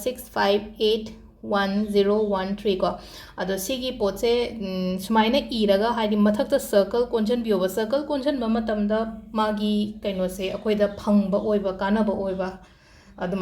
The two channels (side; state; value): both; identical; correlation 1.00